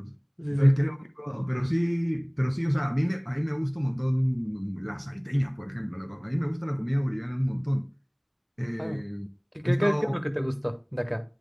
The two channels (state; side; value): identical; both; correlation 1.00